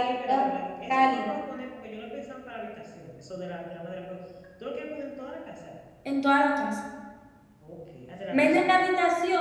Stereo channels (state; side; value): identical; both; correlation 1.00